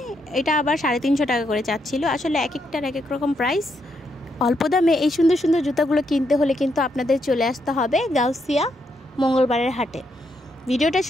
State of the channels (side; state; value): both; normal; correlation 0.78